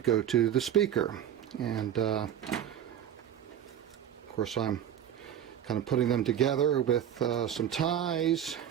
go to the speaker, and of course I'm kind of putting them together with some ties,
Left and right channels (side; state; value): left; quieter; 10.1 dB